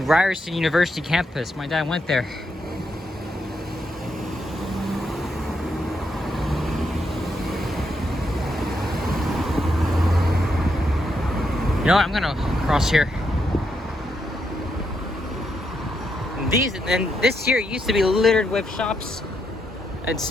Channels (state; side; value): normal; both; correlation 0.80